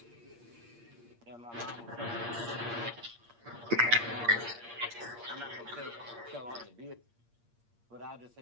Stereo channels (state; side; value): late; left; 8.6 ms